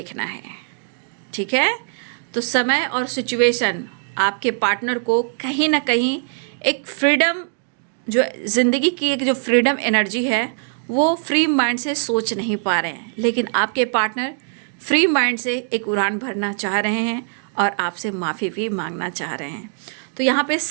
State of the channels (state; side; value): silent; left; 65 dB below the other